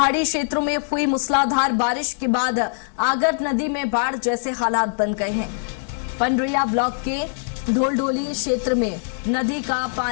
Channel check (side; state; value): right; silent; digital silence